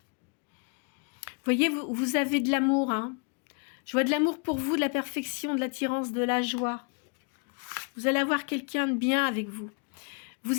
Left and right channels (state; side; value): quieter; right; 36.9 dB